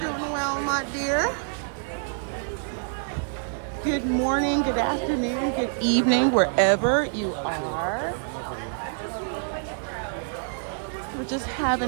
well, my dear. Good morning, good afternoon, good evening, wherever you are. We're just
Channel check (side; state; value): left; silent; 61 dB below the other